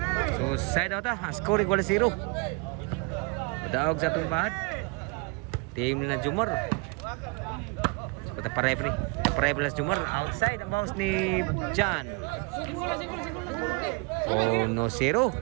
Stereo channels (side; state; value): left; quieter; 30.5 dB